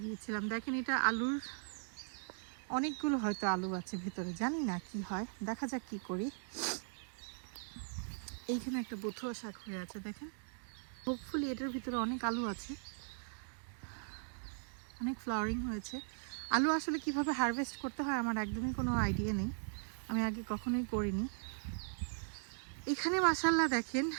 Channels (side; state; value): left; silent; digital silence